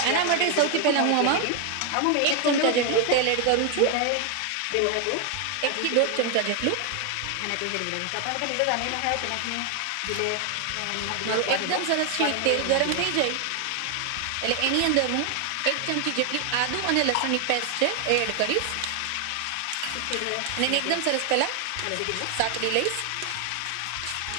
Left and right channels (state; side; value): different; both; correlation 0.01